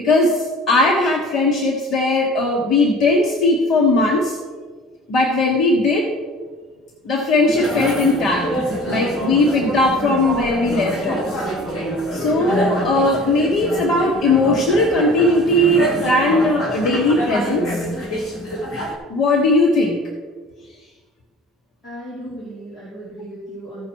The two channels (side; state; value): both; normal; correlation 0.43